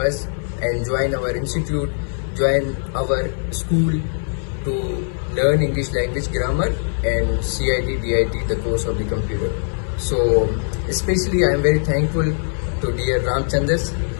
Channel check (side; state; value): right; silent; digital silence